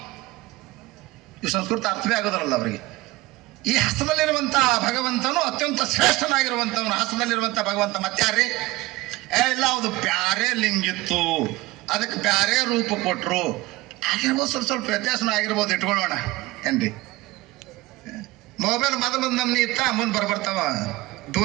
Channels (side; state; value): left; quieter; 19.7 dB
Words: ಈ ಸಂಸ್ಕೃತ ಅರ್ಥವೇ ಆಗೋದಲ್ಲ ಅವರಿಗೆ. ಈ ಹಸ್ತದಲ್ಲಿರುವಂತಹ ಭಗವಂತನು ಅತ್ಯಂತ ಶ್ರೇಷ್ಠನಾಗಿರುವಂತವನು. ಹಸ್ತದಲ್ಲಿರುವಂತ ಭಗವಂತ ಮತ್ಯಾರಿ? ಎಲ್ಲ ಅದು ಬ್ಯಾರೆ ಲಿಂಗಿತ್ತು, ಅದಕ್ಕೆ ಬ್ಯಾರೆ ರೂಪ ಕೊಟ್ರು. ಆಗಿರ್ಬೋದು, ಸ್ವಲ್ಪ ವ್ಯತ್ಯಾಸನೂ ಆಗಿರ್ಬೋದು, ಇಟ್ಕೊಳ್ಳೋಣ ಏನ್ರಿ. ಮೊಬೈಲ್ ಮೊದಲೊಂದು ನಮ್ನಿ ಇತ್ತ, ಮುಂದೆ ಬರ್ತಾವ.